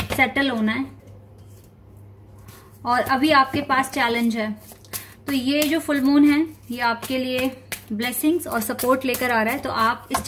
सेटल होना है, और अभी आपके पास चैलेंज है। तो ये जो फुल मून है ये आपके लिए ब्लेसिंग्स और सपोर्ट लेकर आ रहा है, तो आप इस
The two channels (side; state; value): both; identical; correlation 1.00